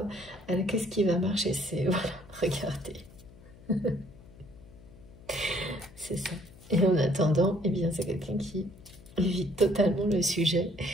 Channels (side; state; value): left; noise; hum, 21 dB below the sound